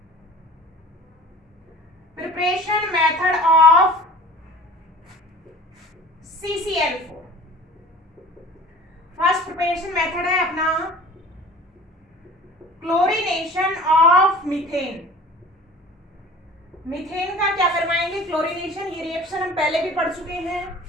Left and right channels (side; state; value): both; normal; correlation 0.43